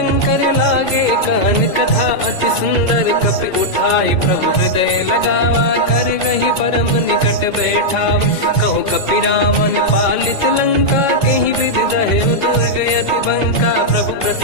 लागे कहन कथा अति सुंदर कपि उठाई प्रभु हृदय लगावा कर गही परम निकट बैठावा कहु कपि रावण पालित लंका कहीं विधि दहे दुर्ग यति बंका प्रभु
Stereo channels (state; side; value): late; right; 2.1 ms